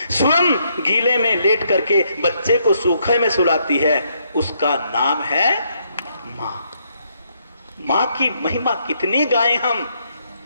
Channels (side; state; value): both; inverted; correlation -0.74